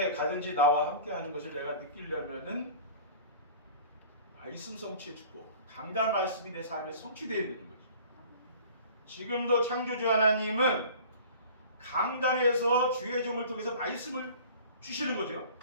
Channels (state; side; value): inverted; both; correlation -0.44